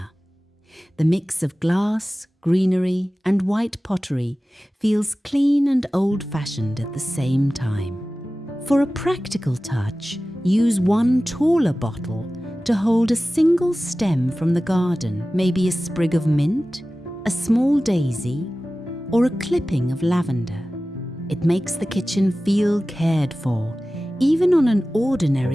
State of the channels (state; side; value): normal; both; correlation 0.96